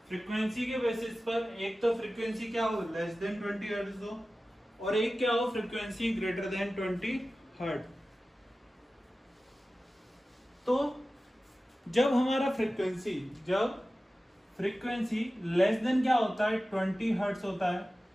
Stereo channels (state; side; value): normal; both; correlation 0.95